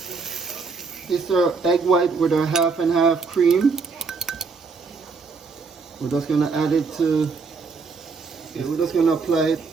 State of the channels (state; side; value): quieter; left; 4.8 dB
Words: This is egg white with a half and half cream. We're just gonna add it to. Okay, we're just gonna apply it.